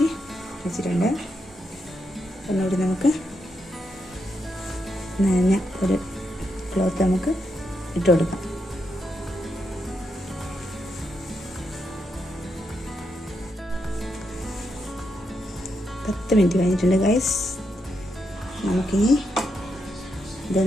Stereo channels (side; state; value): both; normal; correlation 0.82